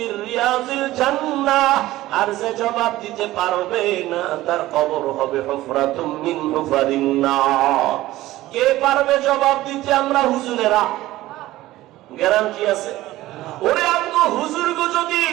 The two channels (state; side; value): quieter; left; 16.4 dB